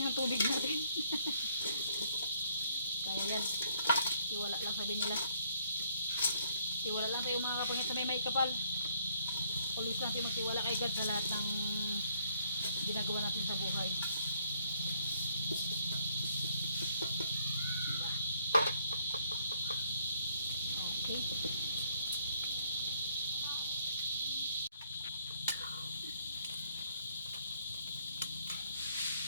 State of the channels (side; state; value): both; inverted; correlation -0.67